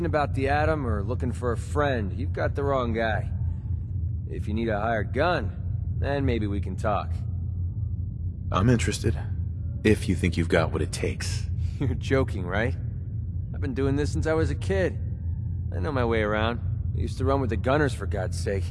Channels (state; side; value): identical; both; correlation 1.00